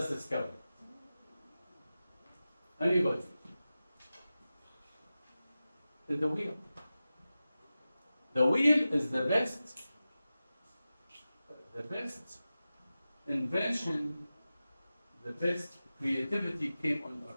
discovered it. Anybody? The wheel. The wheel is the best invention, the best creativity came on earth.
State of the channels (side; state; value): both; inverted; correlation -0.95